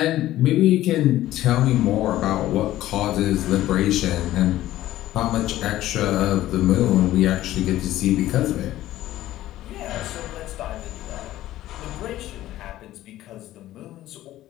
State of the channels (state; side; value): quieter; right; 14.5 dB